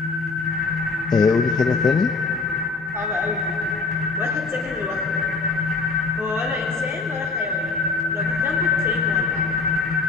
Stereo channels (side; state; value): right; quieter; 4.2 dB